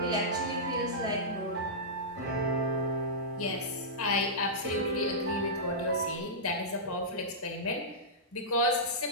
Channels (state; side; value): normal; both; correlation -0.15